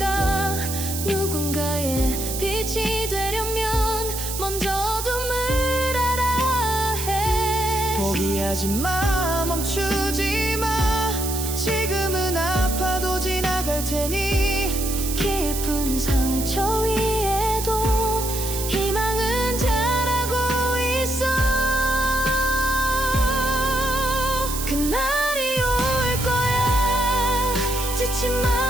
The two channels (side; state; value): right; noise; hiss, 5 dB below the sound